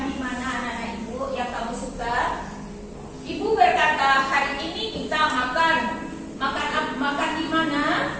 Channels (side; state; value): both; identical; correlation 1.00